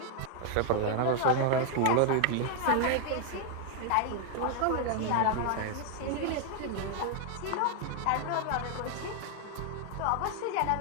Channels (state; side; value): different; both; correlation 0.00